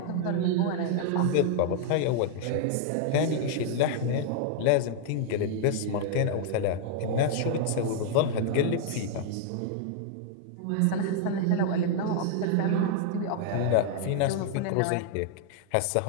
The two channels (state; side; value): different; both; correlation 0.00